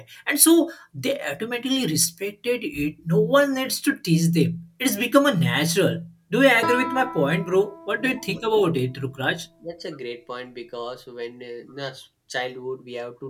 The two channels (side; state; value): both; identical; correlation 1.00